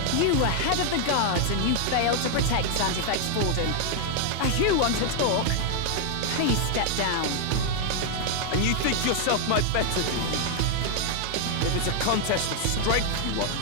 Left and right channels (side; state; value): both; different; correlation 0.00